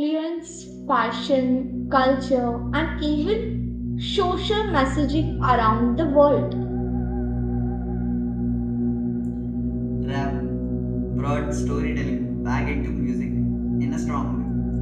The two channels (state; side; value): identical; both; correlation 1.00